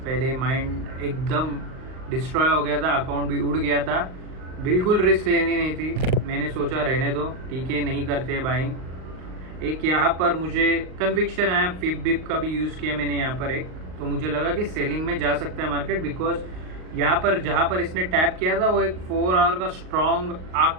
माइंड एकदम डिस्ट्रॉय हो गया था, अकाउंट भी उड़ गया था, बिल्कुल रिस्क लेनी नहीं थी। मैंने सोचा रहने दो, ठीक है, नहीं करते बाइंग। एक यहाँ पर मुझे कन्विक्शन आया, फिप बिप का भी यूज़ किया मैंने यहाँ पर एक, तो मुझे लगा कि सेलिंग में जा सकता है मार्केट, बिकॉज यहाँ पर जहाँ पर इसने टैप किया था वो एक 4 आवर का स्ट्रॉन्ग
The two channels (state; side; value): late; left; 38 ms